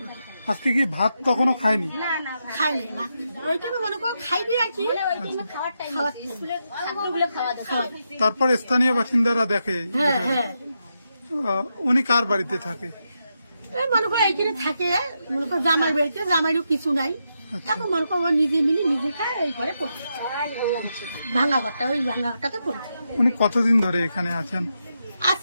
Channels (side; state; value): both; inverted; correlation -0.84